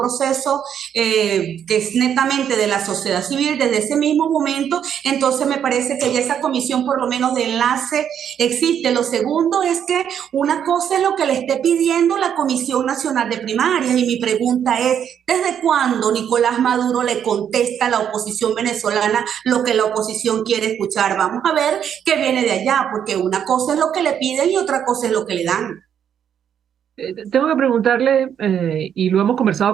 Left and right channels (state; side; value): quieter; left; 8.8 dB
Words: que es netamente de la sociedad civil, desde ese mismo momento, entonces me parece que ya esa comisión por lo menos de enlace existe. Lo segundo es que una cosa es lo que le esté pidiendo la Comisión Nacional de Primarias, y mi pregunta es, ¿desde cuándo Nicolás Maduro le contesta a la oposición venezolana lo que la oposición quiere escuchar? Vamos a ver qué viene de allá, porque una cosa es lo que le piden y otra cosa es lo que le dan. Tengo que preguntarle, y lo hemos